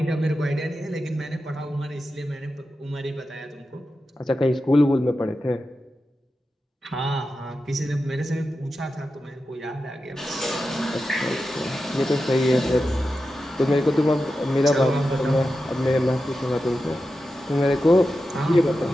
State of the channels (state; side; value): normal; both; correlation 0.91